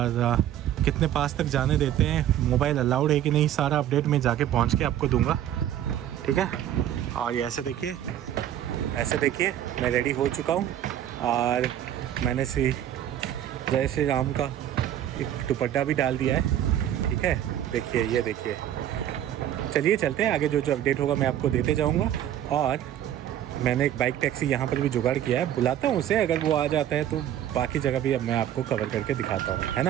कितने पास तक जाने देते हैं, मोबाइल अलाउड है कि नहीं, सारा अपडेट मैं जाके पहुँच के आपको दूंगा। ठीक है। और ये ऐसे देखिए, मैं रेडी हो चुका हूँ और मैंने जय श्री राम का एक दुपट्टा भी डाल दिया है। ठीक है, देखिए, ये देखिए। चलिए चलते हैं आगे, जो अपडेट होगा मैं आपको देते जाऊँगा। और मैंने एक बाइक टैक्सी यहाँ पर भी जुगाड़ किया है, बुलाता हूँ उसे, अगर वो आ जाता है तो बाकी जगह भी अब मैं आपको कवर करके दिखाता हूँ, है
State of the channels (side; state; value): left; quieter; 11.3 dB